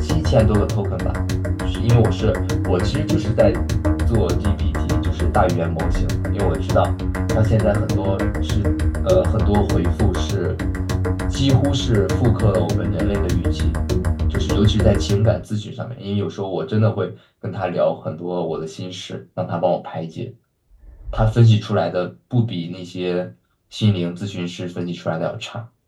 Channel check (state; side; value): identical; both; correlation 1.00